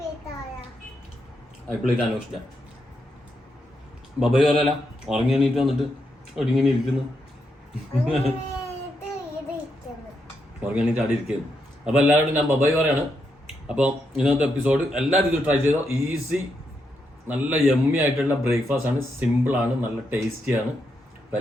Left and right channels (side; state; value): both; normal; correlation 0.81